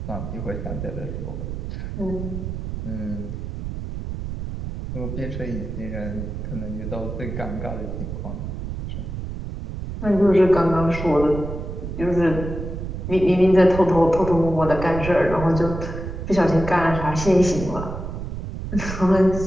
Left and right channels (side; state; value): right; noise; rumble, 6 dB below the sound